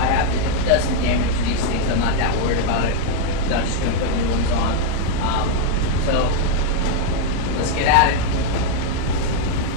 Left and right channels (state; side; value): different; both; correlation 0.00